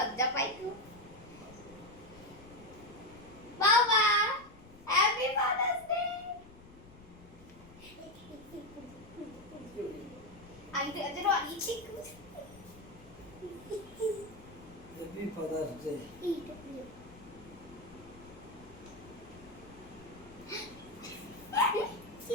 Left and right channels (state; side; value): noise; left; rumble, 21 dB below the sound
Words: পাই খুব। বাবা হ্যাপি ফাদার্স ডে। আমি তো আজ রানি ঠিক হ্যাপি ফাদার্স ডে।